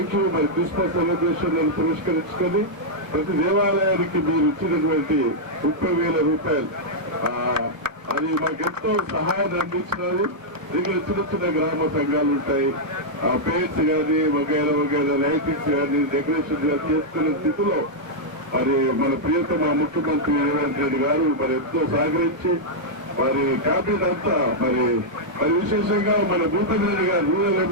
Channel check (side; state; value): left; late; 1.1 ms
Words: you. మరి క్రిస్మస్ సెలబ్రేషన్ పురస్కరించుకొని ప్రతి దేవాలయానికి మీరు ఇచ్చినటువంటి 30,000 రూపాయలు అది మాకెంతో సహాయాన్ని అందించినది. ఇక్కడ చిన్న చిన్న గ్రామ సంఘాలు ఉంటాయి, పేర్స్ కానీ వగైరా వగైరా లైటింగ్స్ కానీ డెకరేషన్ కానీ చేసుకునే స్థితిలో మరి మన ప్రియతమ ముఖ్యమంత్రి రేవంత్ రెడ్డి గారు మరి ఎంతో సహకరించి వారి క్యాబినెట్ అంతా మరి విశేషంగా మన భూపతి రెడ్డి గారు, రూరల్